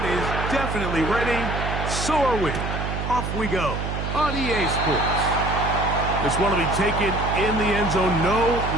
is definitely ready. So are we. Off we go on EA Sports. This one will be taken in the end zone. No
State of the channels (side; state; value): right; noise; hum, 4 dB below the sound